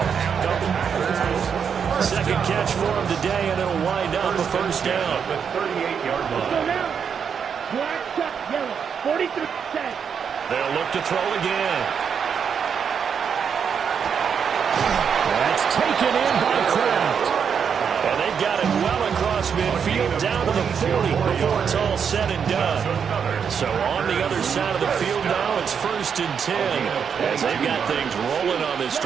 Second catch for him today, and it'll wind up a first down. The 38-yard Go line. now. Black, cut, yellow. 43, set. They'll look to throw again. That's taken in by Kraft. And they've got it well across midfield down to the 40 before it's all said and done. So on the other side of the field now, it's 1st and 10 as they've got things rolling on this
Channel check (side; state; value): left; quieter; 7.0 dB